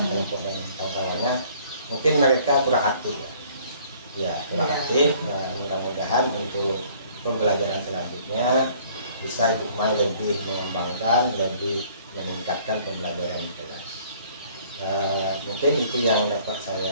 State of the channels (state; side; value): inverted; both; correlation -0.57